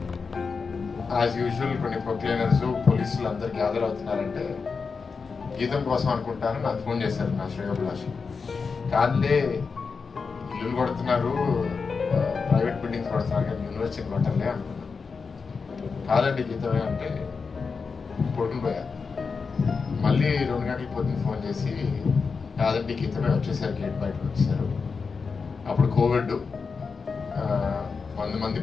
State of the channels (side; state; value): right; quieter; 5.0 dB